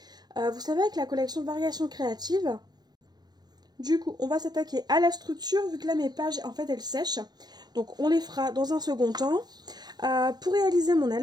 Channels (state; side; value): late; left; 0.19 ms